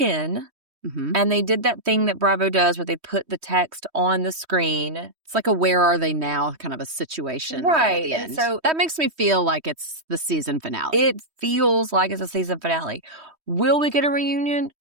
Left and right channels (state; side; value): late; left; 3.1 ms